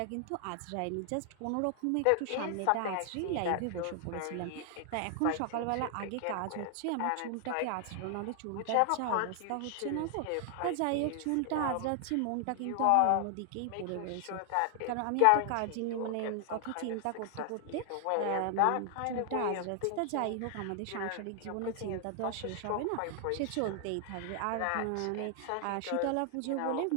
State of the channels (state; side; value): different; both; correlation 0.00